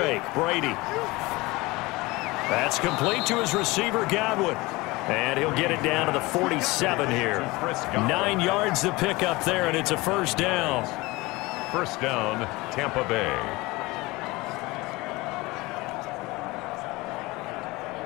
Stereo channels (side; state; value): right; quieter; 22.1 dB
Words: Brady. That's complete to his receiver, Godwin. And he'll get it down to the 47 here. 9 yards to pick up there, and it's a 1st down. 1st down, Tampa Bay.